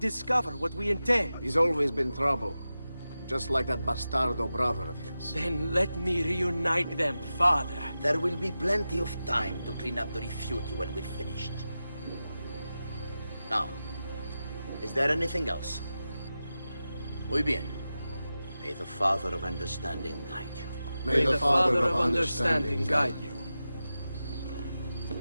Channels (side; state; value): both; inverted; correlation -0.92